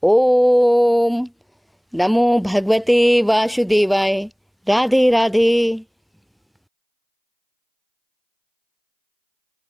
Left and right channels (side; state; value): both; identical; correlation 1.00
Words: ओम नमो भगवते वासुदेवाय। राधे राधे।